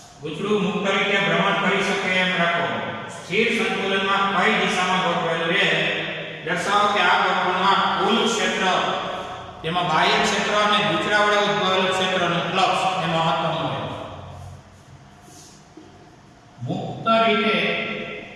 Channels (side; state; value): both; identical; correlation 1.00